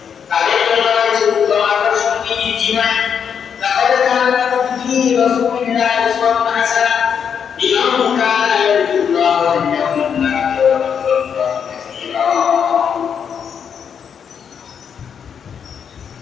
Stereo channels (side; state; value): right; quieter; 7.4 dB